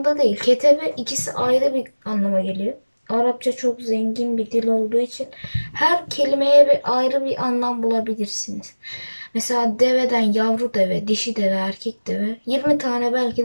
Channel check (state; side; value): inverted; both; correlation -1.00